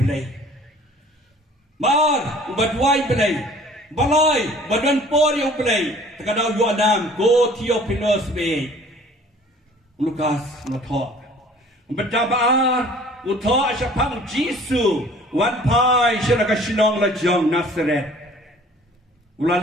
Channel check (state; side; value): normal; both; correlation 0.51